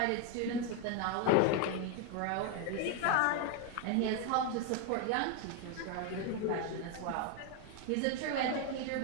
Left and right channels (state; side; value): different; both; correlation 0.01